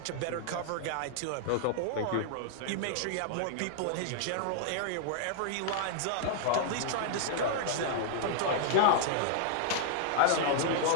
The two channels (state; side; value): different; both; correlation -0.01